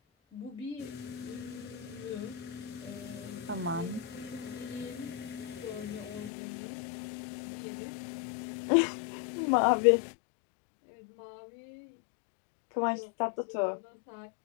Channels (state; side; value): drops out; right; at 6.3 s